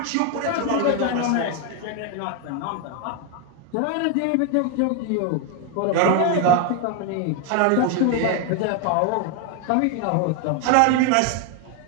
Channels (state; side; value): different; both; correlation 0.01